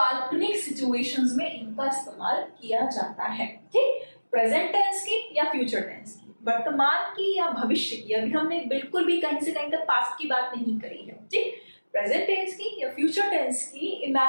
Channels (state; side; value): inverted; both; correlation -1.00